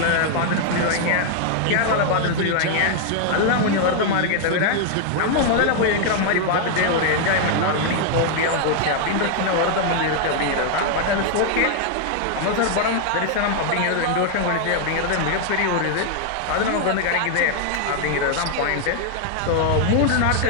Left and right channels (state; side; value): different; both; correlation 0.00